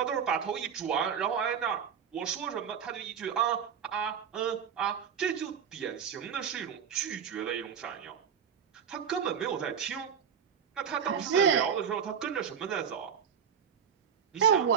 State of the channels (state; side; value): quieter; left; 7.6 dB